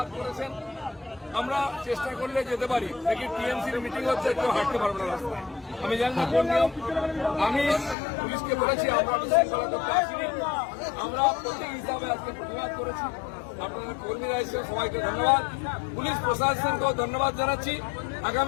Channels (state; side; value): drops out; right; at 8.0 s